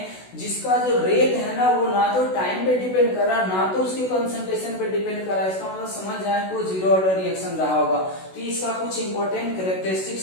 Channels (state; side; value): late; right; 16 ms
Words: जिसका जो रेट है ना वो ना तो टाइम पे डिपेंड कर रहा ना तो उसके कंसंट्रेशन पे डिपेंड कर रहा है, इसका मतलब समझ जाए कि वो जीरो ऑर्डर रिएक्शन रहा होगा। तो इसका कुछ इंपॉर्टेंट